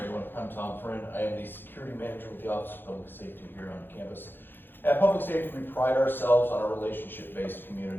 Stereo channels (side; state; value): right; late; 0.098 ms